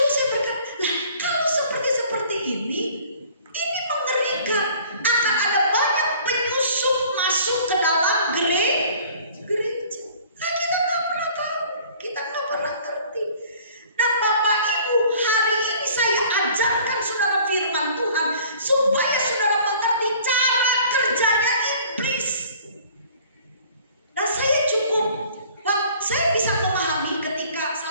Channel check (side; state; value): both; inverted; correlation -0.52